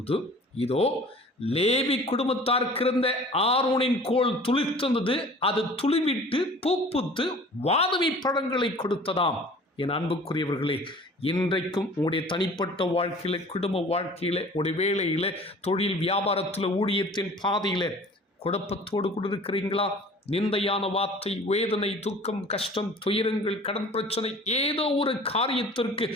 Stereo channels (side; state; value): both; normal; correlation 0.46